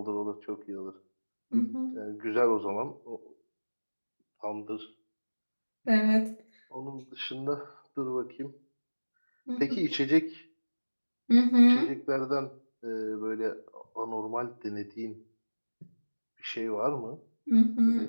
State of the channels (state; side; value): inverted; both; correlation -1.00